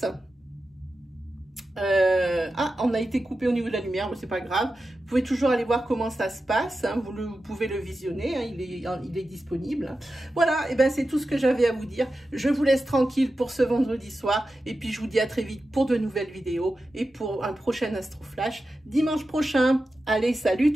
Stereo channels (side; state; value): both; normal; correlation 0.92